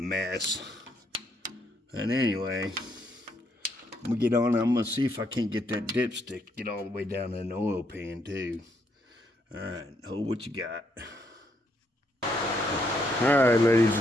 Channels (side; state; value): both; normal; correlation 0.74